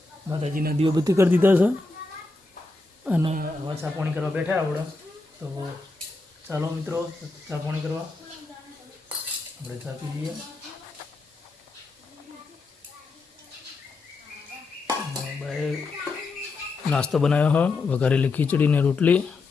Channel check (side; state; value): right; quieter; 3.4 dB